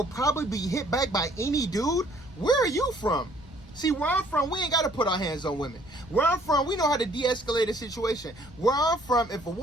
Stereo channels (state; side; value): noise; left; rumble, 23 dB below the sound